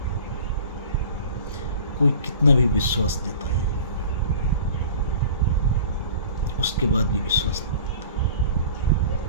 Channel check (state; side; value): inverted; both; correlation -0.42